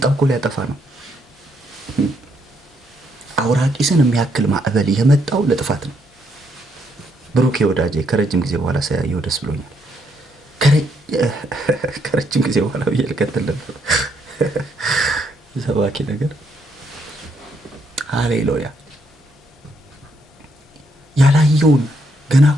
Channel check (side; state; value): both; normal; correlation 0.74